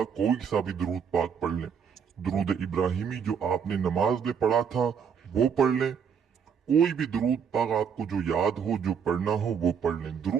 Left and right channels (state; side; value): quieter; left; 7.1 dB